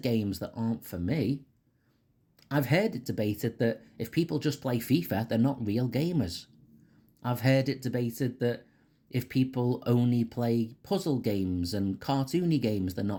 games that aren't for me. I've heard it debated that if people just play FIFA, they're not real gamers. I've heard it debated that if people only play puzzle games and cartoony games, they're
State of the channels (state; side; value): identical; both; correlation 1.00